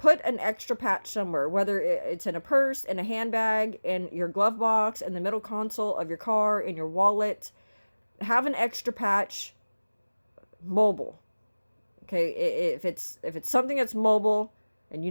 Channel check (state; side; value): inverted; both; correlation -1.00